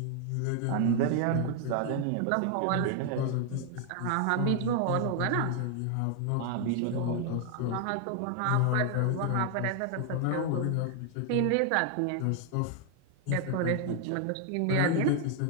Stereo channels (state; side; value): different; both; correlation 0.00